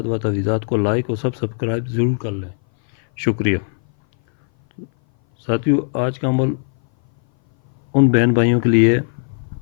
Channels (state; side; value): silent; right; 59 dB below the other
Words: و تعویذات کو لائک اور سبسکرائب ضرور کر لیں، شکریہ۔ ساتھیو، آج کا عمل ان بہن بھائیوں کے لیے